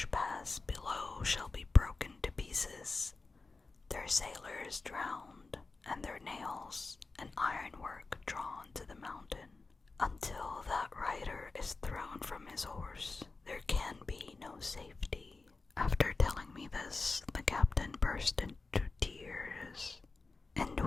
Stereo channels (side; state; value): right; quieter; 3.9 dB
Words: pass below shall be broken to pieces, their sailors drowned, and their nails and ironwork drawn to the mountain. Until that rider is thrown from his horse, there can be no safety." After telling me this, the captain burst into tears, and